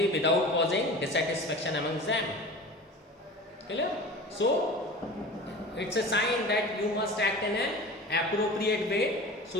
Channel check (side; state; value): both; normal; correlation 0.36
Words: without causing dissatisfaction among them. Clear? So it's a sign that you must act in an appropriate way